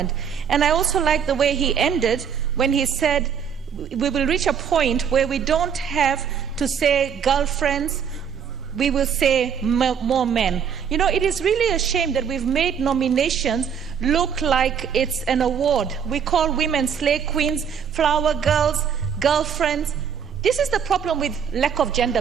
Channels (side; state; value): left; quieter; 7.5 dB